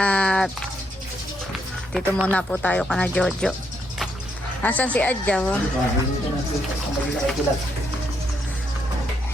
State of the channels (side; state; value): both; normal; correlation 0.76